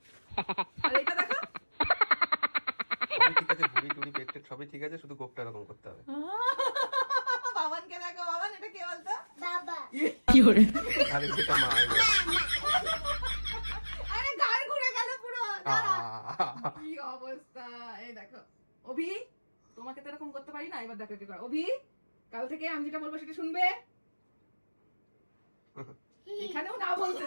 আর এটা দেখো, সবই ঠিক আছে, ভুড়ি টুড়ি পেট টেট সবই ঠিক আছে, শুধু গোপটা এরকম করতে হবে। বাবানকে দেখো। বাবান, এটা কে বলতো? বাবা। আরে সেটা মা। আরে গাল ঘুরে গেল পুরো। কি অবস্থা, এই দেখো। অভি, তোমাকে তো এরকম করতে পারি না, এবার দেখো কি করে। অভি, কাল থেকে আমি যেটা বলবো সেটা শুনবে। এখানেও না বলছে,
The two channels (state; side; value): inverted; both; correlation -1.00